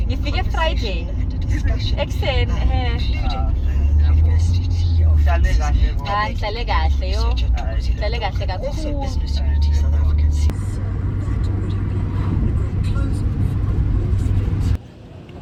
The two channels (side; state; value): both; identical; correlation 1.00